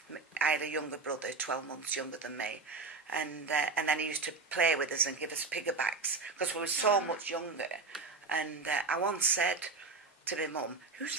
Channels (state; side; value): quieter; left; 4.2 dB